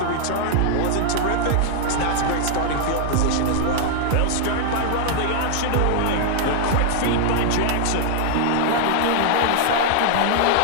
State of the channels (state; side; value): different; both; correlation -0.01